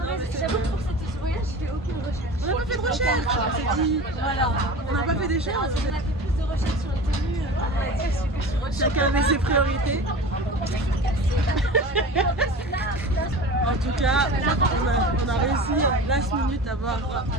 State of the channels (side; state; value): both; normal; correlation 0.35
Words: J'avoue que pour ce voyage, j'ai fait aucune recherche. On n'a pas fait de recherche. On s'est dit, voilà. On n'a pas fait d'échange. On a fait plus de recherches sur les tenues. Chacun avait ses priorités. En tout cas, on a réussi last minute à avoir